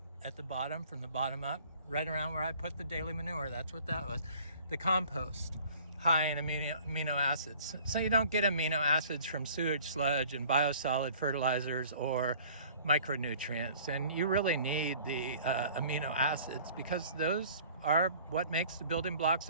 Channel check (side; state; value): both; inverted; correlation -0.50